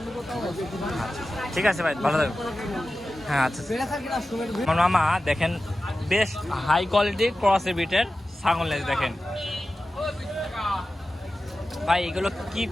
ঠিক আছে ভাই, ভালো থাকবেন। হ্যাঁ আচ্ছা, আমার মামা দেখেন বেশ হাই কোয়ালিটি ক্রসের বিটের ছাগল লেজ দেখেন ভাই। এগুলো কি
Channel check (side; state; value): both; normal; correlation 0.94